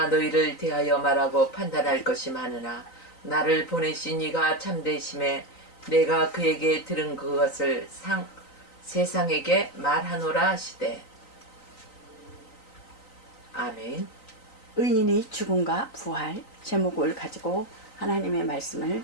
너희를 대하여 말하고 판단할 것이 많으나 나를 보내신 이가 참되심에 내가 그에게 들은 그것을 세상에게 말하노라 하시되. 아멘. 의인이 죽음과 부활 제목을 가지고 하나님의 말씀을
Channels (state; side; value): late; right; 3.9 ms